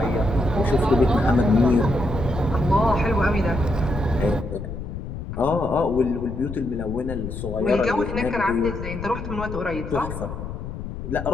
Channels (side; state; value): left; noise; rumble, 7 dB below the sound